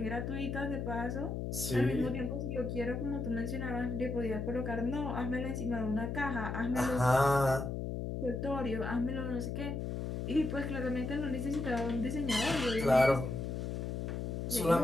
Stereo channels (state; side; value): noise; left; hum, 3 dB below the sound